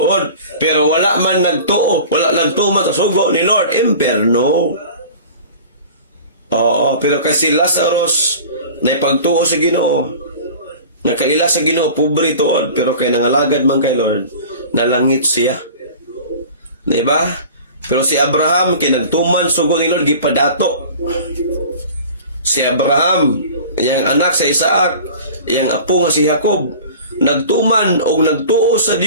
pero wala man nagtuo, wala nagtuman sa sugo ni Lord, impyerno. Oo, pero kasi Lazarus, na ipagtuo sa Ginoo, nakaila sa Ginoo, pobre tuod, pero kay nangalagad man kay Lord, nalangit siya. Diba? Pero si Abraham, kinagtuman sugo ni Lord, gipadato. Si Abraham, yang anak sa Isaac, yang apo nga si Jacob, nagtuman o nagtuo sa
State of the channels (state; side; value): inverted; both; correlation -0.40